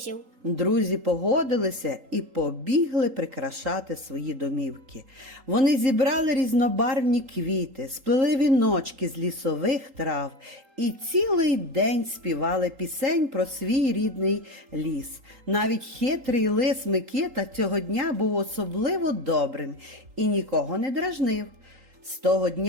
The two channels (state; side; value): late; left; 3.8 ms